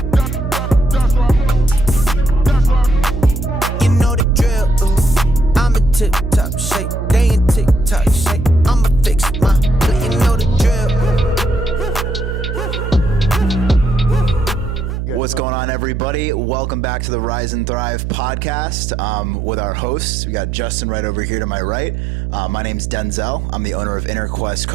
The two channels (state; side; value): noise; right; hum, 4 dB below the sound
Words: You know the drill. I'm a tip-top shape. They in tick-tock shape. I'ma fix my play. You know the drill. What's going on, everybody? Welcome back to the Rise and Thrive podcast with our hosts. We got Justin right over here to my right. My name's Denzel. I'm the owner of Inner Quest